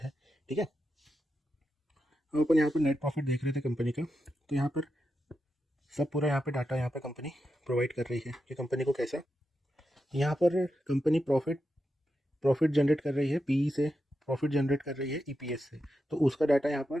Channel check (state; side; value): normal; both; correlation 0.88